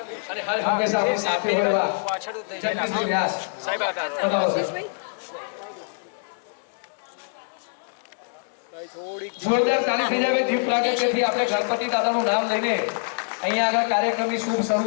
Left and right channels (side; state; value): right; silent; digital silence